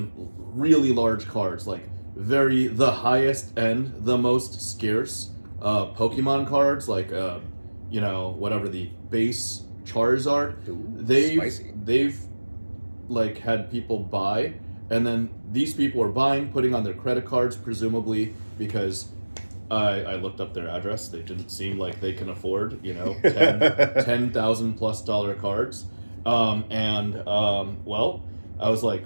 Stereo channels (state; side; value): inverted; both; correlation -1.00